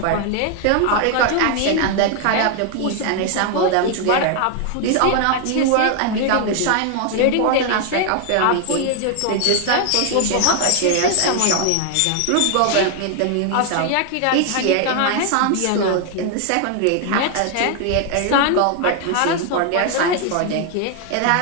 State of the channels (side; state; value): both; different; correlation 0.00